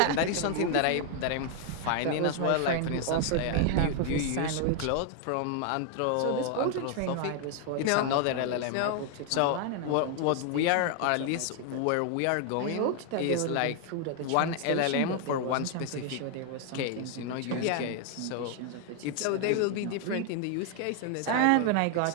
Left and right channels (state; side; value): different; both; correlation 0.00